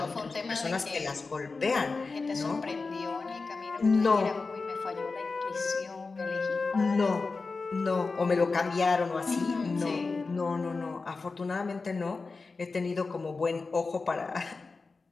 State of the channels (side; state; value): right; quieter; 4.1 dB